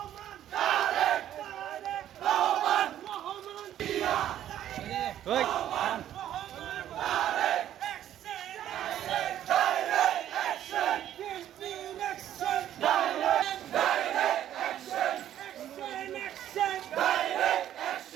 তারেক তারেক রহমান রহমান জিয়া ওই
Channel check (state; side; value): quieter; left; 11.5 dB